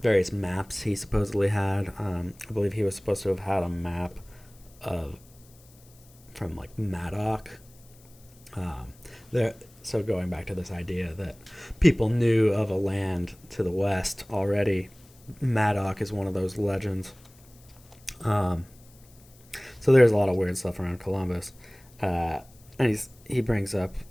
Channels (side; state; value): left; noise; hiss, 27 dB below the sound